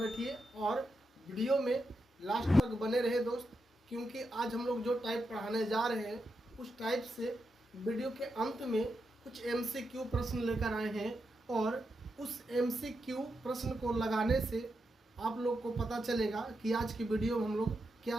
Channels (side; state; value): both; normal; correlation 0.86